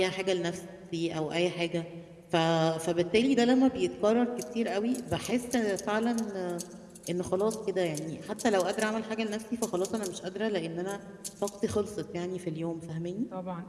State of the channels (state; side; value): identical; both; correlation 1.00